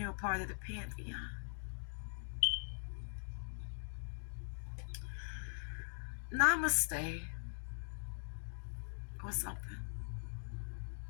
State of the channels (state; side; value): silent; right; digital silence